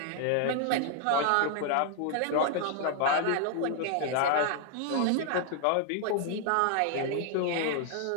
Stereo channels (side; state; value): both; different; correlation 0.00